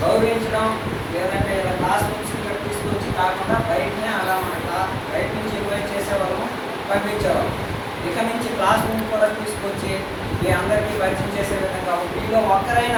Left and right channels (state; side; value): identical; both; correlation 1.00